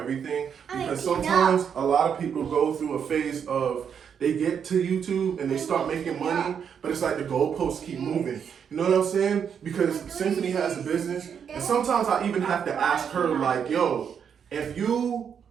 Because sometimes a lot of people go through a phase of they get to YouTube and they start making money, but it's like the goalposts keep moving. You know what I'm saying? Because Cymphany has a business, and sometimes I even have to ask her, like, yo, if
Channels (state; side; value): quieter; left; 7.5 dB